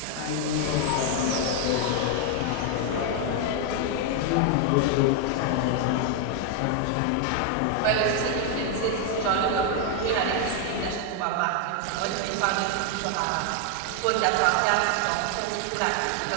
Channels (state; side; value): different; both; correlation 0.00